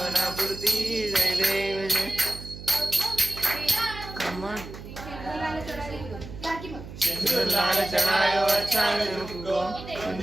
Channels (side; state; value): right; noise; hum, 13 dB below the sound